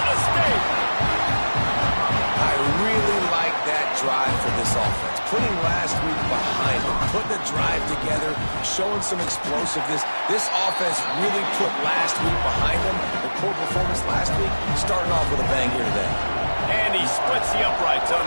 State. I really like that drive for this offense. Putting last week behind them, putting the drive together, showing some explosiveness. This offense really put last week behind them. The poor performance last week, starting off with a bang here today. And he splits the uprights on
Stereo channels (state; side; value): inverted; both; correlation -1.00